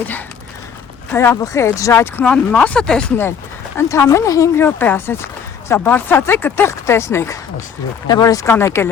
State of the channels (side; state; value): right; quieter; 7.4 dB